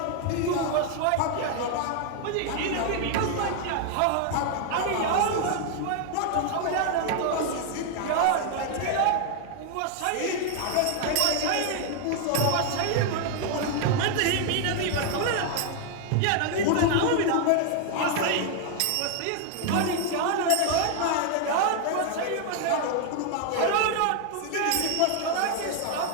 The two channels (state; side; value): different; both; correlation 0.00